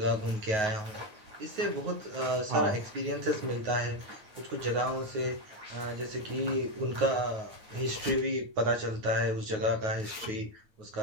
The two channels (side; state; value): left; late; 9.4 ms